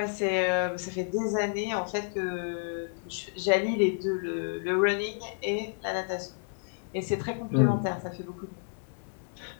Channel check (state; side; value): silent; right; digital silence